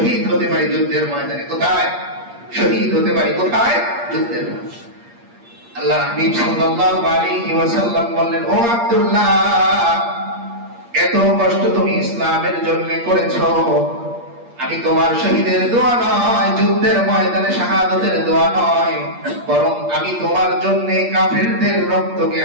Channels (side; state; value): left; late; 8.5 ms